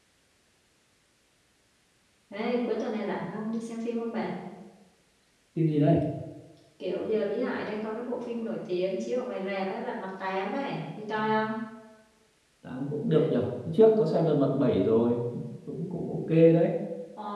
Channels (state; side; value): identical; both; correlation 1.00